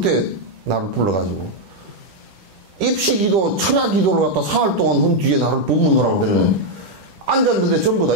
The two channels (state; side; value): late; left; 10 ms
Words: 때 나를 불러가지고 입시기도 철야기도를 갖다 사흘 동안 한 뒤에 나를 법문하라고 들으면 앉았는데 전부 다